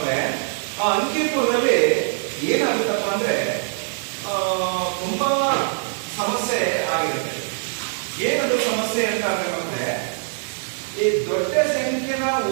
ಆ ಅಂಕಿಪುರದಲ್ಲಿ ಏನಾಗುತ್ತಪ್ಪ ಅಂದ್ರೆ ತುಂಬಾ ಸಮಸ್ಯೆ ಆಗಿರುತ್ತೆ. ಏನದು ಸಮಸ್ಯೆ ಅಂತ ಅಂದ್ರೆ ಈ ದೊಡ್ಡ ಸಂಖ್ಯೆನ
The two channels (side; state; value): left; silent; digital silence